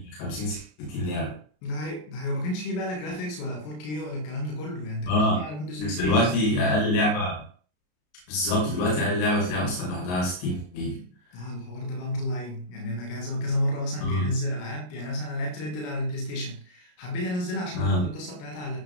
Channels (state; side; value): late; right; 33 ms